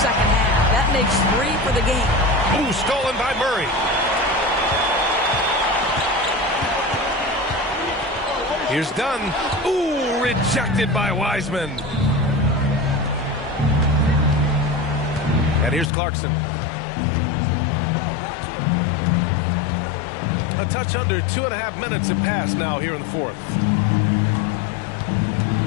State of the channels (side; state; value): right; drops out; at 15.9 s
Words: half. That makes 3 for the game. Ooh, stolen by Murray. Here's Dunn. Ooh, rejected by Wiseman. And here's Clarkson. A touch under 2.5 minutes have passed now here in the fourth.